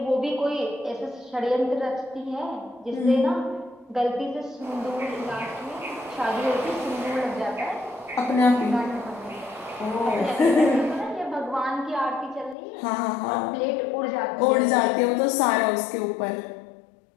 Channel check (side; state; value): right; drops out; at 12.6 s